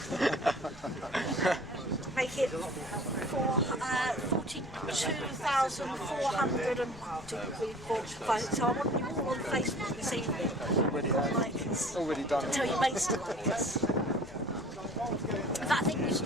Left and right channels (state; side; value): noise; left; rumble, 20 dB below the sound